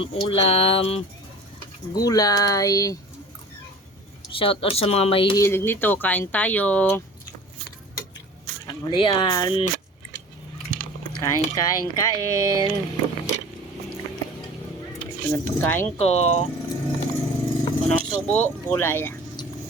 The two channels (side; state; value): both; normal; correlation 0.41